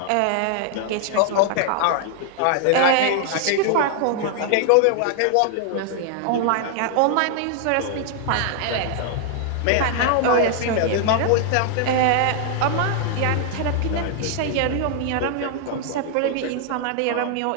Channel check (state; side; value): different; both; correlation 0.00